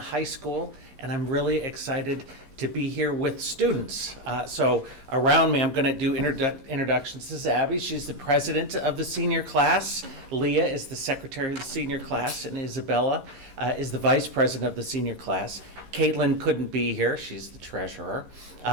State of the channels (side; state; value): left; late; 15 ms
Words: school, and I'm really excited to be here with students. So around me, I'm going to do introductions. This is Abby. She's the president of the senior class. Leah is the secretary of the senior class, and Isabella is the vice president of the senior class. Caitlin couldn't be here. She's the treasurer.